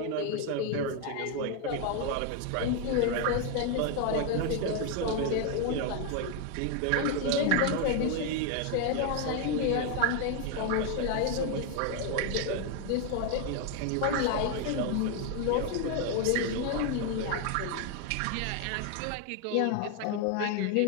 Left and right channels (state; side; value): different; both; correlation 0.01